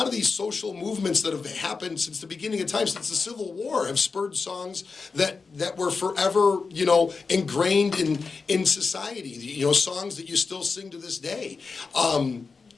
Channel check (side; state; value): right; quieter; 4.7 dB